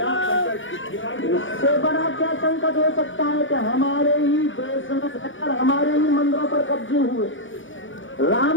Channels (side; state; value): right; late; 0.56 ms